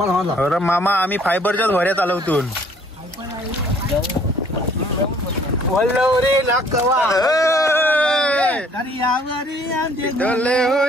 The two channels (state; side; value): normal; both; correlation 0.59